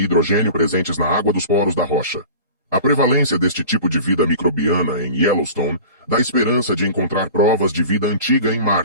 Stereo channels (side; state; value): both; inverted; correlation -0.39